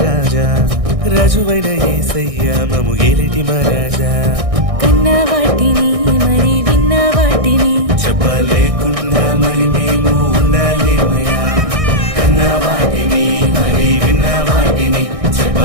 రాజువైన యేసయ్య మమ్ము ఏలటి మహారాజా. కన్న వాటిని మరి విన్న వాటిని చెప్పలేకుండా మరి మేము ఉండాలేమయ్యా, కన్న వాటిని మరి విన్న వాటిని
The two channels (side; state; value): left; late; 1.6 ms